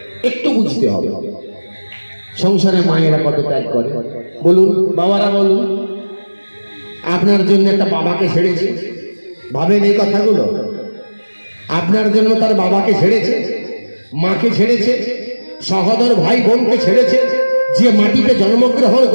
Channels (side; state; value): both; inverted; correlation -1.00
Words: একটু বুঝতে হবে সংসারে মায়েরা কত ত্যাগ করে। বলুন বাবারা, বলুন আপনার জন্য একটা বাবাকে ছেড়েছে, ভাবেন এই কথাগুলো? আপনার জন্য তার বাবাকে ছেড়েছে, মাকে ছেড়েছে, সহোদর ভাই বোনকে ছেড়েছে। যে মাটিতে জন্মগ্রহণ